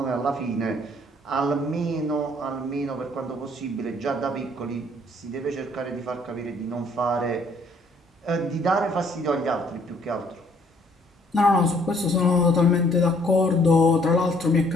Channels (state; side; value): normal; both; correlation 0.62